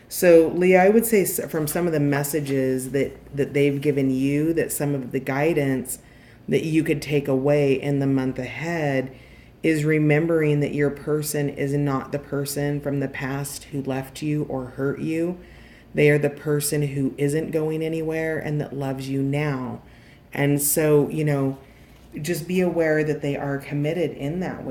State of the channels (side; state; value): both; identical; correlation 1.00